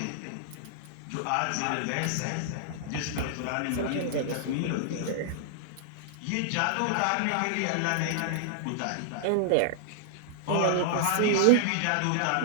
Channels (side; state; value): both; different; correlation -0.01